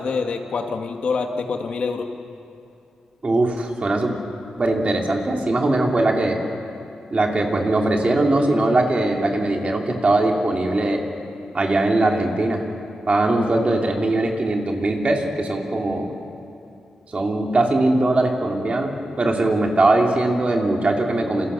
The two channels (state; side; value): normal; both; correlation 0.91